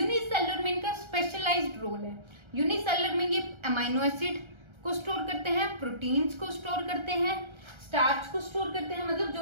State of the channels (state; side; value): late; left; 1.3 ms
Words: में इनका स्पेशलाइज्ड रोल है। यूनिसेलुलर में ये अमाइनो एसिड को स्टोर करते हैं, प्रोटीन्स को स्टोर करते हैं, स्टार्च को स्टोर करते हैं, मतलब